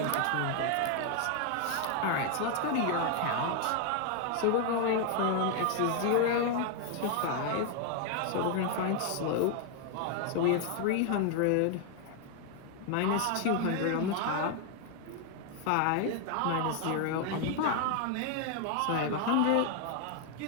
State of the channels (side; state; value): both; different; correlation 0.00